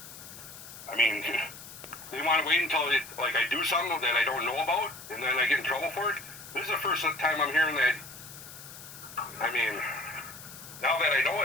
I mean, they want to wait until I do something that I don't know about, and then I get in trouble for it? This is the first time I'm hearing that. I mean, now that I know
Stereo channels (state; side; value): noise; left; hiss, 15 dB below the sound